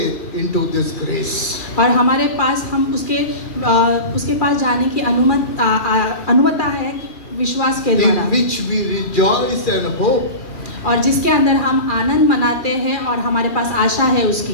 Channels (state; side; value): late; right; 2.3 ms